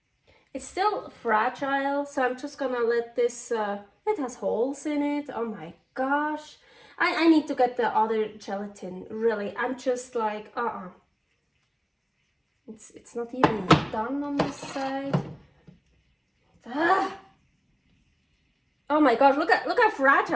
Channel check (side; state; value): both; identical; correlation 1.00